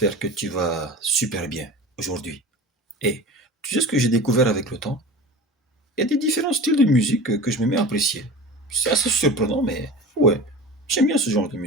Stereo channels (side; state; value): both; normal; correlation 0.35